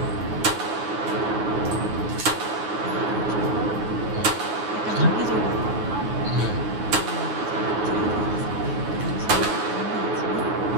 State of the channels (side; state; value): left; late; 9.4 ms